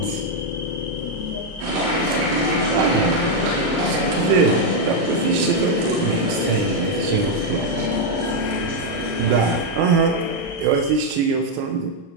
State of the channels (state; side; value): late; left; 29 ms